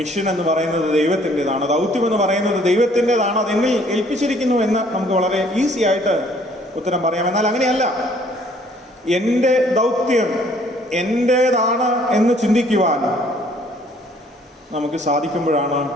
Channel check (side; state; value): both; normal; correlation 0.60